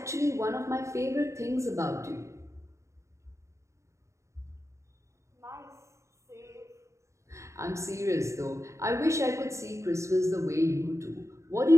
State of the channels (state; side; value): late; left; 0.14 ms